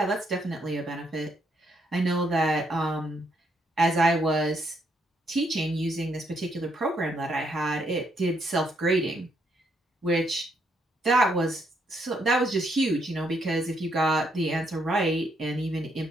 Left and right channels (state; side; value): normal; both; correlation 0.74